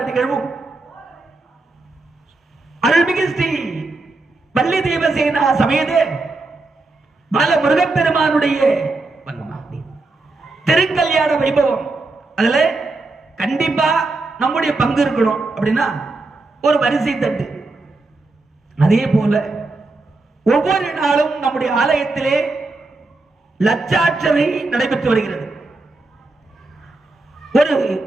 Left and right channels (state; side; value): quieter; left; 3.3 dB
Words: நிகழ்வும் அருள்மிகு ஸ்ரீ வள்ளி தேவசேனா சமேத பால முருகப்பெருமானுடைய திருக்கல்யாண வைபவம் அதுல கண்டிப்பா நம்முடைய பங்கு இருக்கணும். அப்படின்னா ஒரு வரிசை தட்டு. அதே போல ஒவ்வொரு நாளும் நம்முடைய ஆலயத்திலே லட்சார்ச்சனை நடைபெற்று வருகிறது. ஒரு